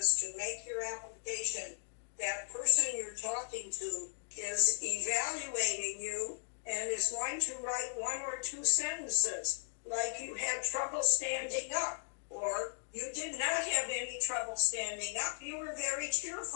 to make your application, that person you're talking to is evaluating you and is going to write one or two sentences, like you had trouble standing up, or you did not have any trouble standing up. You were very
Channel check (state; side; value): silent; right; digital silence